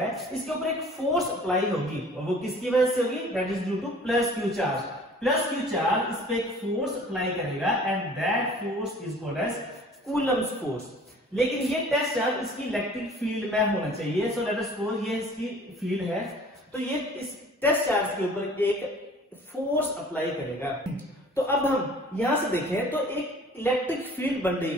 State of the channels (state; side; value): normal; both; correlation 0.49